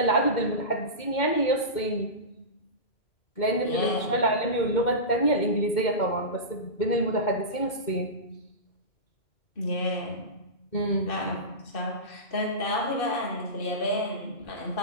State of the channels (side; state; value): right; late; 2.2 ms